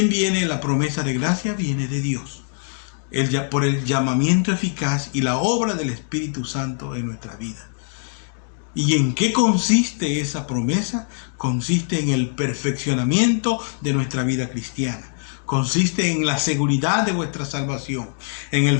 viene la promesa de gracia? Viene de Dios. Por el llamamiento eficaz y la obra del Espíritu Santo en nuestra vida. ¿Y en qué consiste esa promesa? Consiste en el perfeccionamiento de nuestra vida cristiana. Consiste en la seguridad de vuestra salvación, en el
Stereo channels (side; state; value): right; silent; 64 dB below the other